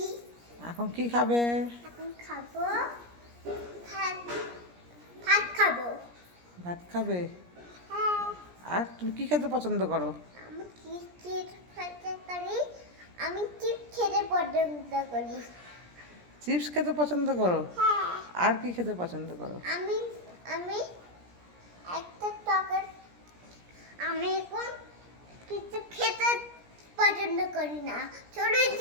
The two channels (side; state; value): left; late; 17 ms